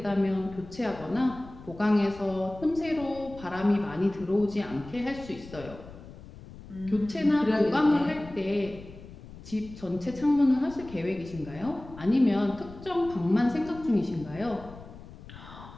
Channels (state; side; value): noise; left; rumble, 17 dB below the sound